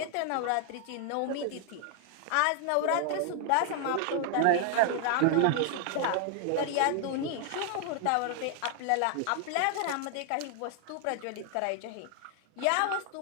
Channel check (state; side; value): different; both; correlation 0.00